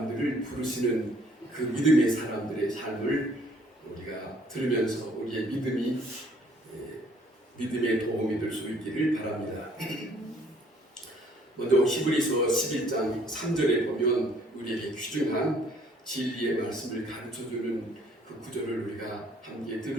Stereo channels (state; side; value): normal; both; correlation 0.61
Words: 부르시는 그 믿음의 사람들의 삶을 우리가 들으면서 우리의 믿음에 도움이 될 수 있기를 바랍니다. 먼저 히브리서 11장 3절에 보면 우리에게 귀중한 진리의 말씀을 가르쳐주는 그 구절을 우리가 함께